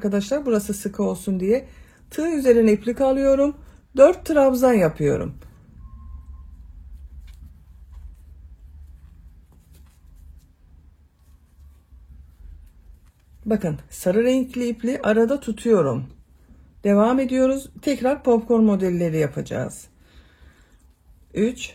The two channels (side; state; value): both; identical; correlation 1.00